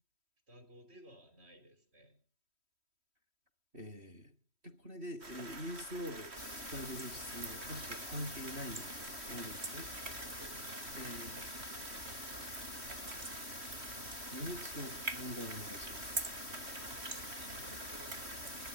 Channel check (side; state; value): left; late; 3.1 ms